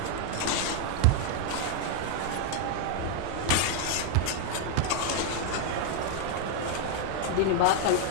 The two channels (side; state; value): both; different; correlation 0.00